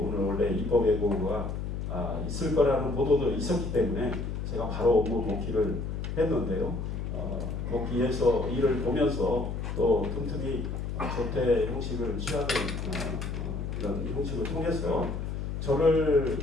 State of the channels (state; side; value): noise; left; hum, 4 dB below the sound